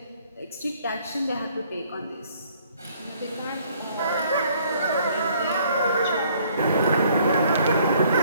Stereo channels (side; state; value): both; inverted; correlation -0.62